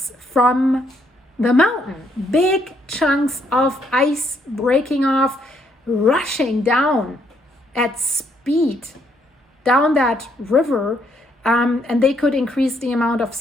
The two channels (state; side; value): normal; both; correlation 0.72